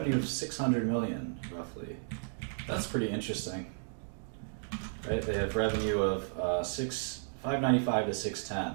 of 600 million, roughly. That's pretty interesting, right? They have revenue of 595 to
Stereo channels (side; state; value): left; silent; digital silence